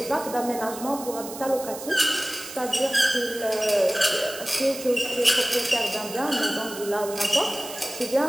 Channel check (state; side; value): noise; right; hiss, 12 dB below the sound